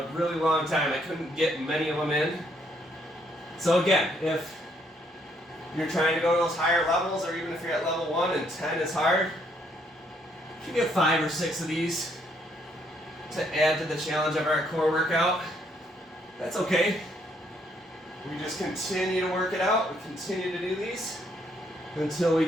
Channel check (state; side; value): normal; both; correlation 0.70